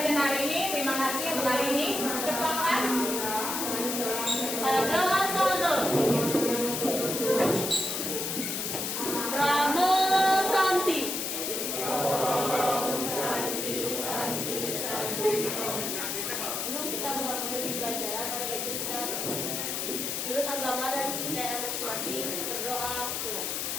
hari ini. Terima kasih untuk hari ini. Ketua kelas. Adalah Sono Ramo Santi. Sebelum kita mengakhiri pelajaran, ada baiknya kita menurut agama dan kepercayaan masing-masing berdoa pulang.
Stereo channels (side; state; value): left; noise; hiss, 2 dB below the sound